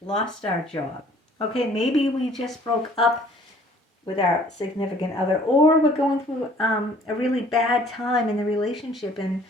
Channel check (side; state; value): both; normal; correlation 0.55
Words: our job. Okay, maybe we just broke up with our significant other, or we're going through a really bad time in the relationship and